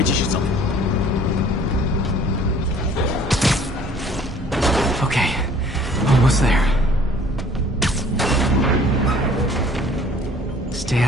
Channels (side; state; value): both; normal; correlation 0.54